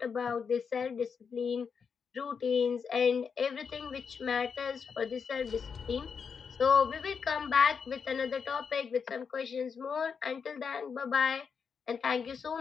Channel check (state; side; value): quieter; right; 6.2 dB